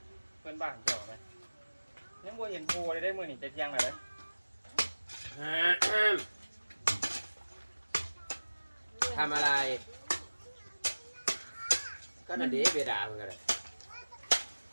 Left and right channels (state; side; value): inverted; both; correlation -1.00